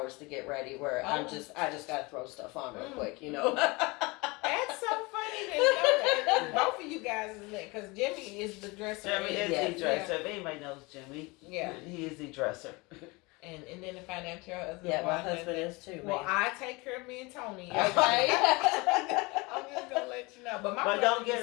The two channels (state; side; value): quieter; right; 25.2 dB